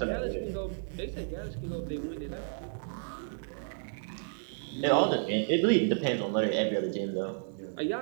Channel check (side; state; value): left; silent; digital silence